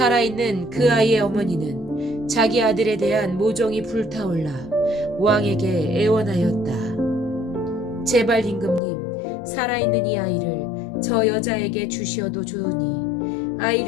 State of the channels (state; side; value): drops out; right; at 8.8 s